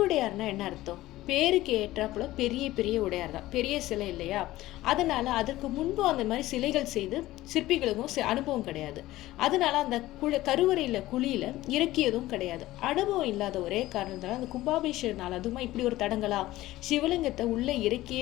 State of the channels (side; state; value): right; quieter; 16.5 dB